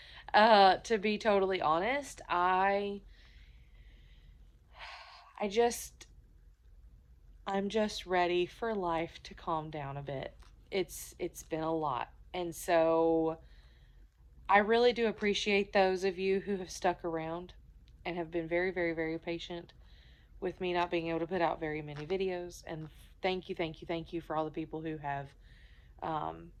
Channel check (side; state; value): both; identical; correlation 1.00